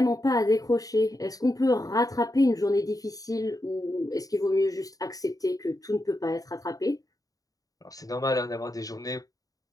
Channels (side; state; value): right; late; 0.17 ms